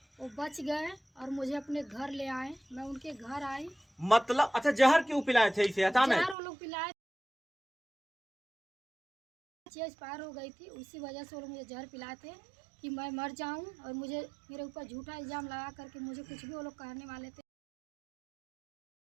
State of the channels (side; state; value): left; drops out; at 6.4 s